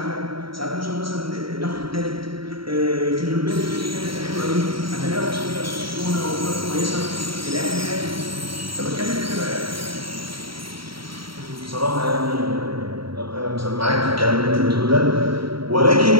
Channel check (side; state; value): left; late; 0.74 ms